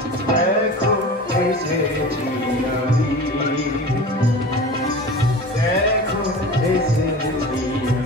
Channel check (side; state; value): both; normal; correlation 0.35